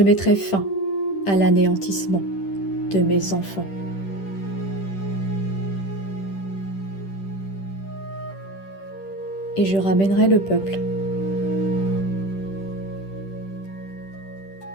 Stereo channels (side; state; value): right; late; 10 ms